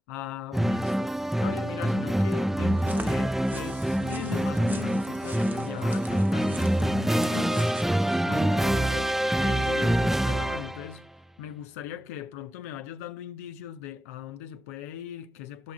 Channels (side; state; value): both; normal; correlation 0.92